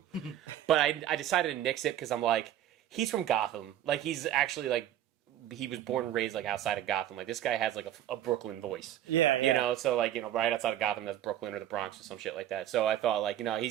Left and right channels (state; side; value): quieter; left; 11.8 dB